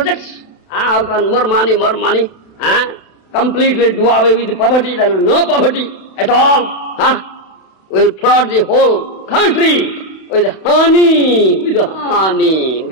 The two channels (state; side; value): late; right; 32 ms